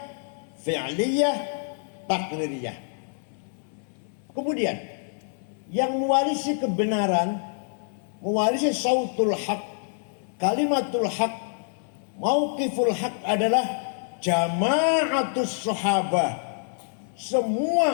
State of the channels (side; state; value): right; silent; 61 dB below the other